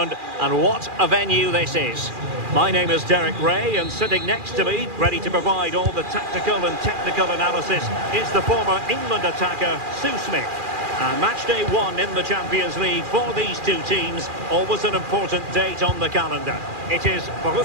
and what a venue this is. My name is Derek Ray, and sitting next to me, ready to provide all the tactical and technical analysis, is the former England attacker, Sue Smith. And match day 1 in the Champions League for these two teams, always an important date on the calendar. It is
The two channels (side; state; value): left; late; 2.4 ms